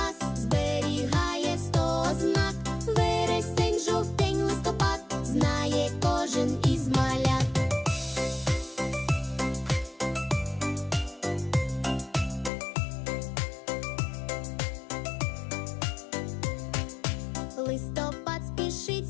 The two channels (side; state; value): right; drops out; at 12.5 s